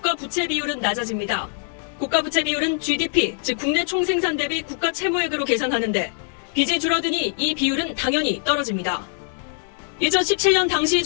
부채 비율은 낮아집니다. 국가 부채 비율은 GDP, 즉 국내 총생산 대비 국가 채무액으로 계산하는데 빚이 줄어드니 이 비율은 당연히 떨어집니다. 2017년 당시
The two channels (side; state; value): right; silent; 64 dB below the other